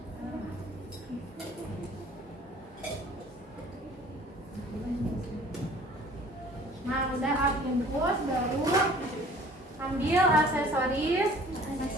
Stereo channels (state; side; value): normal; both; correlation 0.50